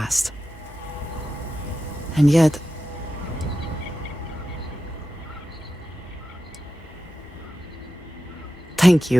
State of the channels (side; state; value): both; normal; correlation 0.92